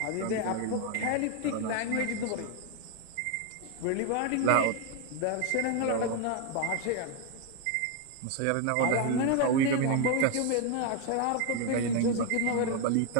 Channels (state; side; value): different; both; correlation 0.01